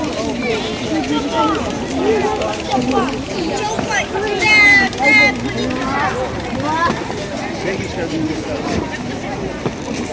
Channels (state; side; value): identical; both; correlation 1.00